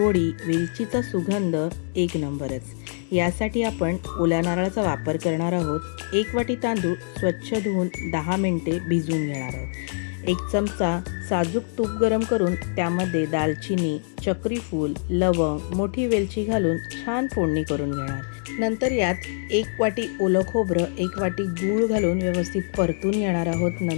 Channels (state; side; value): silent; right; 62 dB below the other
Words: वेलचीचा सुगंध एक नंबरच। यासाठी आपण ओल्या नारळाचा वापर करणार आहोत। 1 वाटी तांदूळ स्वच्छ धुवून 10 मिनिटे भिजवून घेणार आहोत। 1 चमचा साजूक तूप गरम करून त्यामध्ये दालचिनी, चक्री फूल, लवंग, मोठी वेलची घालून छान फोडणी करून घेणार। नंतर यात 1 वाटी ओलं खोबरं, 1 वाटी गूळ घालून व्यवस्थित परतून घेणार आहोत।